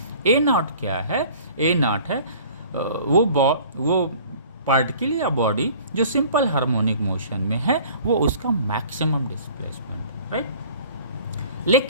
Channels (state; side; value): inverted; both; correlation -0.48